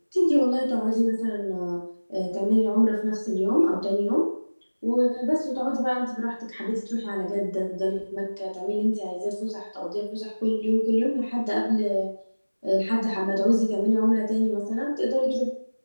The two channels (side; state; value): both; inverted; correlation -1.00